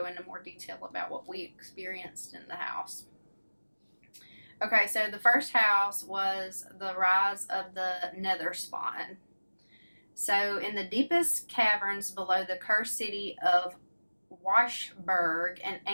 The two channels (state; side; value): inverted; both; correlation -1.00